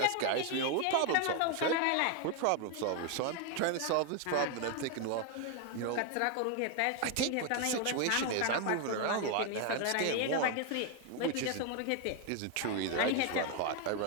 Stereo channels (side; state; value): both; different; correlation 0.01